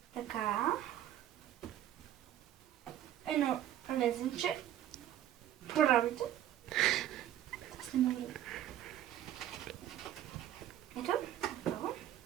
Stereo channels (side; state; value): left; quieter; 11.9 dB